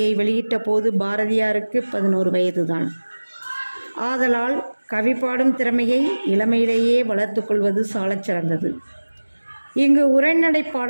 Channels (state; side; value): inverted; both; correlation -1.00